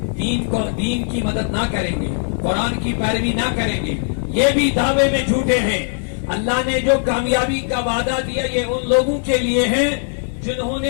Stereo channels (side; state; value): right; silent; digital silence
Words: دین کی مدد نہ کریں گے، قرآن کی پیروی نہ کریں گے، یہ بھی دعوے میں جھوٹے ہیں۔ اللہ نے جو کامیابی کا وعدہ دیا یہ ان لوگوں کے لیے ہے جنہوں نے